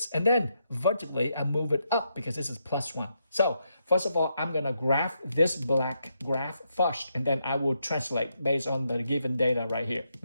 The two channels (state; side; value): inverted; both; correlation -0.80